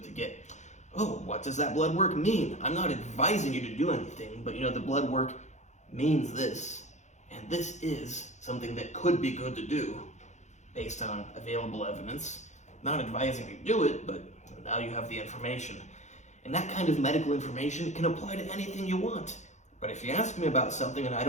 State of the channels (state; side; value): late; right; 0.34 ms